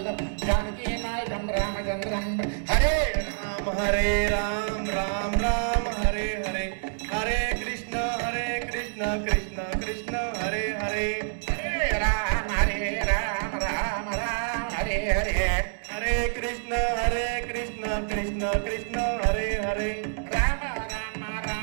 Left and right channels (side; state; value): left; silent; digital silence